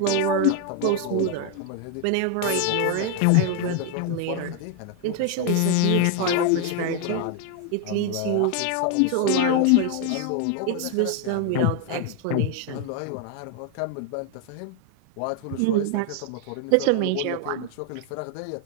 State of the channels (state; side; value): different; both; correlation 0.01